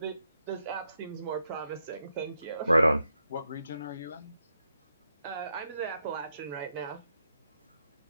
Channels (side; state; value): both; inverted; correlation -0.82